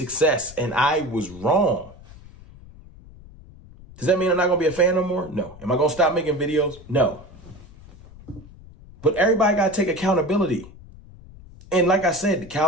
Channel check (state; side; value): noise; left; rumble, 20 dB below the sound